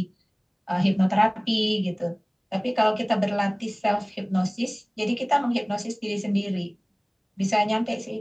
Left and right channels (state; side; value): identical; both; correlation 1.00